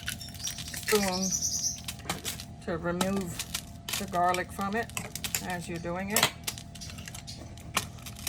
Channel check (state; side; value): identical; both; correlation 1.00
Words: to remove the garlic from it as you're doing it.